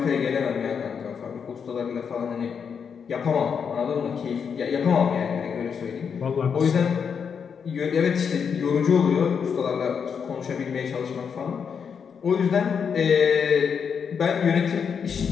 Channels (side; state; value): right; quieter; 6.7 dB